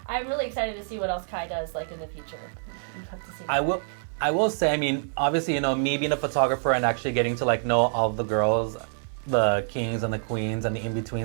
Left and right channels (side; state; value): left; silent; 58 dB below the other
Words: excited to see what else Kai does like in the future. We'll have to see. I will say, I mean, obviously, you know, me being a photographer and actually getting to like know all the girls, the kings and the queens and the